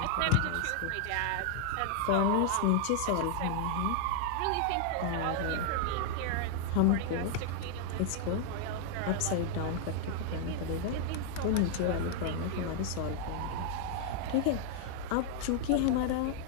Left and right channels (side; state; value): both; different; correlation 0.00